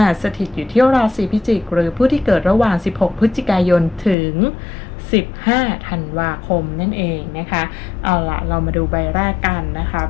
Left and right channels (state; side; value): drops out; right; at 4.2 s